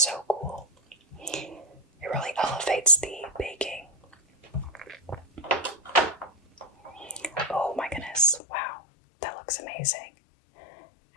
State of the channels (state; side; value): drops out; right; at 8.4 s